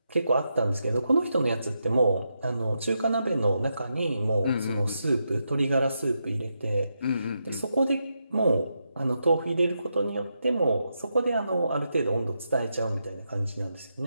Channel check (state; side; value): inverted; both; correlation -0.84